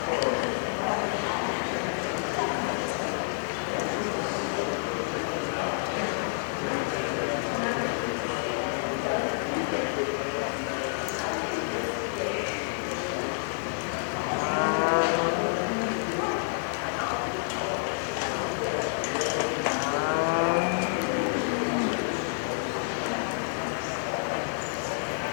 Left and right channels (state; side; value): silent; right; 59 dB below the other